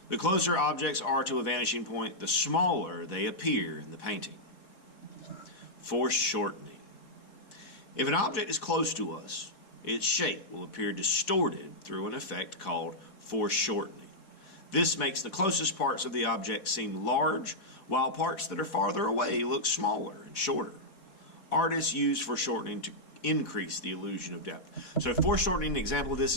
The closer objects are to a vanishing point, the smaller they appear in the painting. Foreshortening. If an object is close to us, its shape will appear distorted through an effect called foreshortening. This makes the closest parts of the object seem large, while parts that are farther away look smaller and shorter. Artists use foreshortening to increase the illusion of depth. So foreshortening, an example of this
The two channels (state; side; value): late; right; 4.1 ms